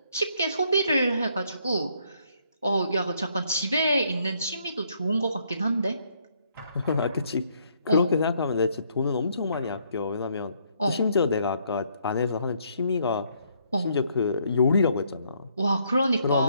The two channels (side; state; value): both; inverted; correlation -0.70